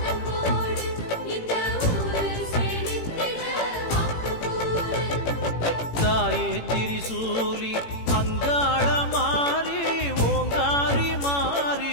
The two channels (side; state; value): right; late; 18 ms